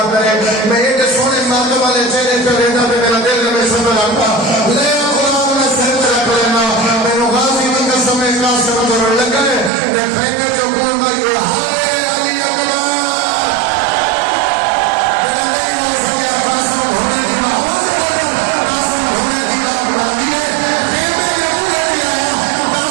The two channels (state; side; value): drops out; left; at 9.7 s